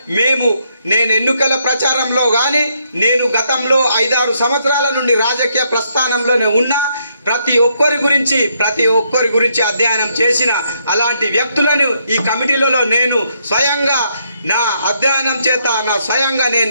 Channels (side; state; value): both; inverted; correlation -0.74